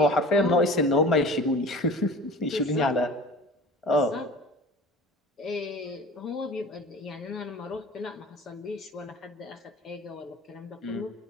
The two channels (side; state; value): both; normal; correlation 0.39